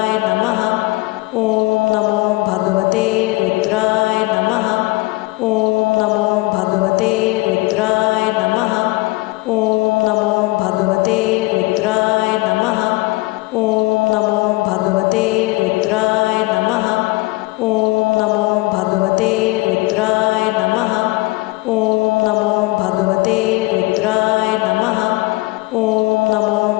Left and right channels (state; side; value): quieter; right; 22.2 dB